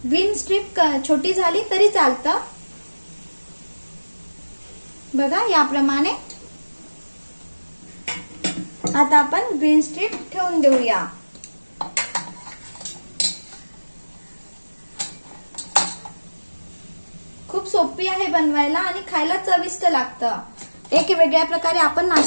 ग्रीन स्ट्रिप छोटी झाली तरी चालतं. बघा याप्रमाणे. आता आपण ग्रीन स्ट्रिप ठेवून देऊया. खूप सोपी आहे बनवायला आणि खायला चविष्ट लागतं. एक वेगळ्या प्रकारे आपण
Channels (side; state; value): both; inverted; correlation -1.00